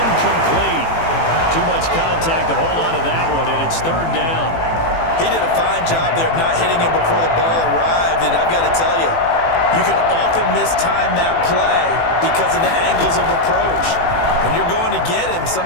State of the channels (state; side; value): late; right; 18 ms